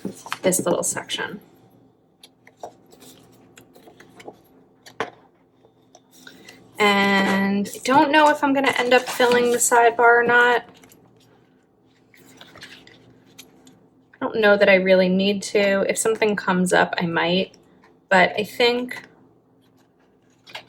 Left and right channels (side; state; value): both; identical; correlation 1.00